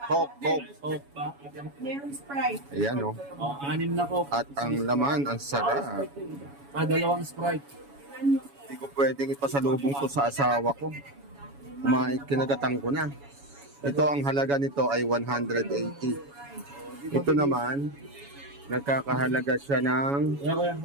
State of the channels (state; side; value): late; left; 7.1 ms